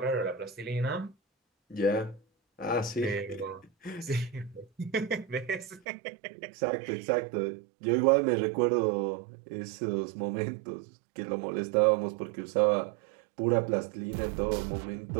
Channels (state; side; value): drops out; left; at 5.8 s